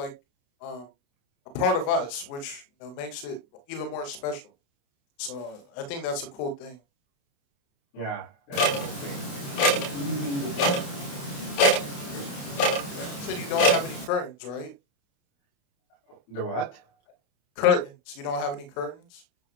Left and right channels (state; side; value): late; right; 28 ms